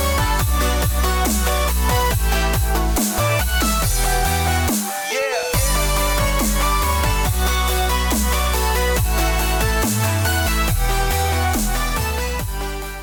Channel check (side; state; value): both; identical; correlation 1.00